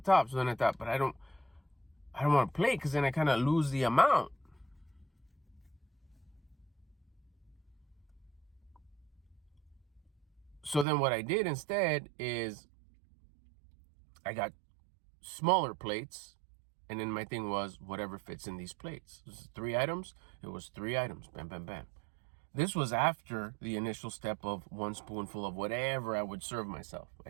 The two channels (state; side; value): drops out; left; at 10.9 s